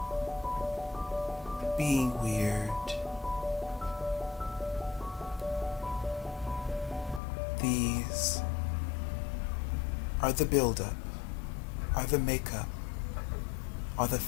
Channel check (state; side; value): drops out; right; at 7.2 s